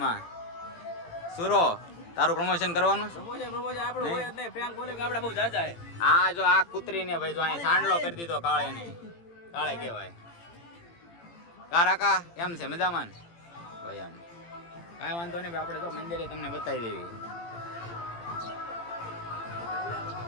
સુરો તારું પ્રમોશન કરવાનું આ જો આ કૂતરીને ભાઈ જો અહીં સાંડલો કરી દીધો કાળે ને કાળે કહેવાય. કારાકા એમ છે મજામાં ભાઈ? એમ કાંઈ વાંધો નહીં ભાઈ, આપણે તો મંદિરે તમને બતાવી દેવી.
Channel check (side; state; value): right; late; 18 ms